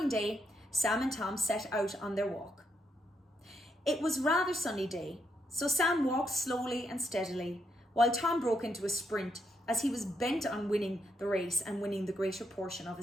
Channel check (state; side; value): normal; both; correlation 0.79